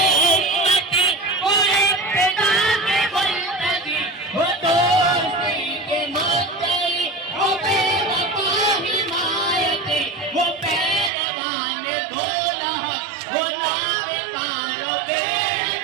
उम्मती, वो इब्तिदा के मुल्तजी, वो दोस्ती के मुद्दई, वो बेवफा हिमायती, वो पैरवान बोला हक, वो नावेकारो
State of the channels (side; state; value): left; drops out; at 11.1 s